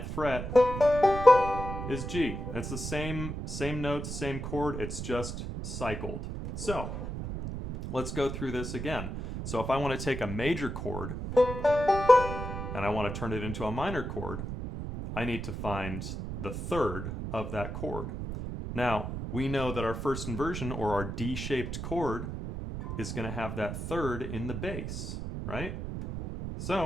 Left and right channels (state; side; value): noise; right; rumble, 5 dB below the sound